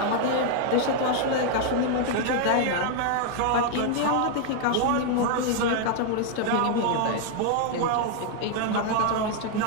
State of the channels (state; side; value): different; both; correlation 0.00